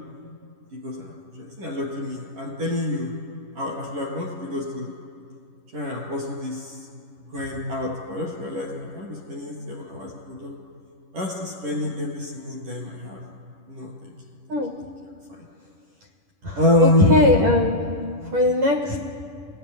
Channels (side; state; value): left; late; 10 ms